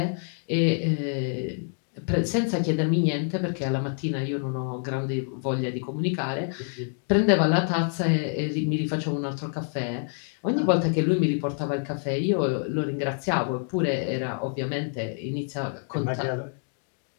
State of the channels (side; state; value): right; silent; 57 dB below the other